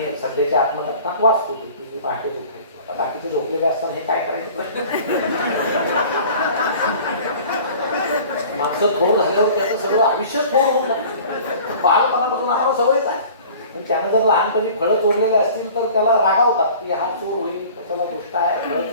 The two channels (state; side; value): inverted; both; correlation -0.45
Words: सध्याच्या आत्मकथनात वाचतो की मी पहाटेच उठायचो. आता बाकीचे झोपलेले असताना हे काय करायचं माणसं थोर झाल्यावर त्याचं सगळं आयुष्य थोर होऊन लागतं. बालपणापासून आम्हाला सवयच आहे. पण त्यानं जर लहानपणी फळं चोरलेले असतील तर त्याला रागावतात की हा चोर होईल, त्याला गोष्ट आहे, फळं